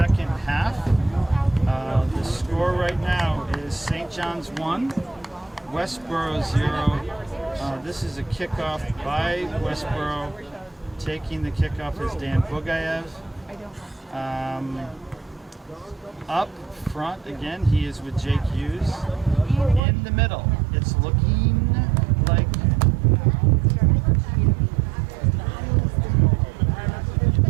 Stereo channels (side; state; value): left; drops out; at 19.8 s